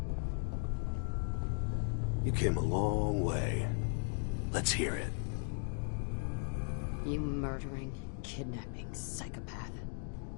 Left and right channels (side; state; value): right; silent; 53 dB below the other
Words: You came a long way. Let's hear it. You murdering, kidnapping psychopath.